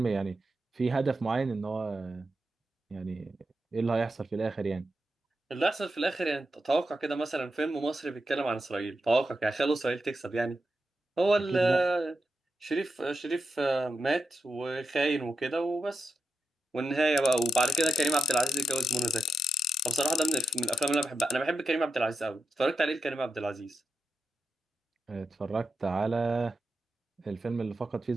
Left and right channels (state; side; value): normal; both; correlation 0.88